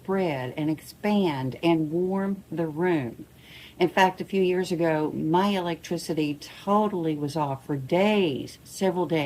and expand and warm the room. In fact, a few years ago, my electricity totally was off for days, several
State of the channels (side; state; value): both; identical; correlation 1.00